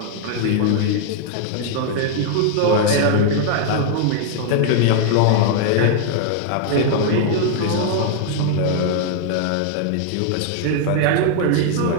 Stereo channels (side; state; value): both; different; correlation 0.00